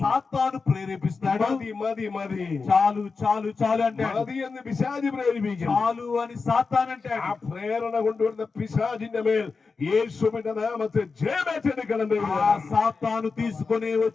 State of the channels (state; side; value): quieter; right; 4.6 dB